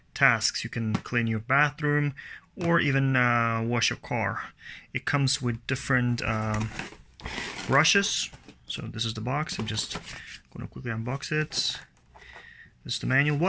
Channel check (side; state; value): both; identical; correlation 1.00